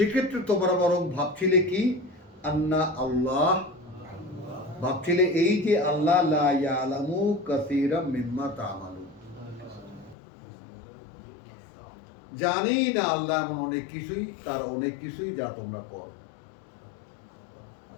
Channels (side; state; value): right; drops out; at 10.2 s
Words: তোমরা বরং ভাবছিলে কি, আন্না আল্লাহ, ভাবছিলে এই যে আল্লাহ লা ইয়ালামু কাসীরাম মিম্মা তা'মালুন, জানি না আল্লাহ এমন অনেক কিছুই, তার অনেক কিছুই যা তোমরা করো।